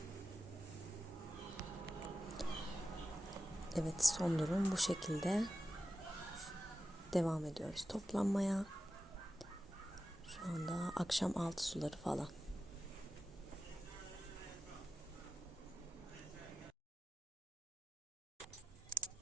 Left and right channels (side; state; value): both; normal; correlation 0.92